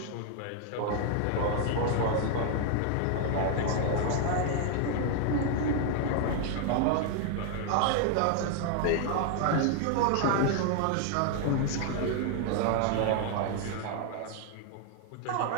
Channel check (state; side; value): different; both; correlation 0.00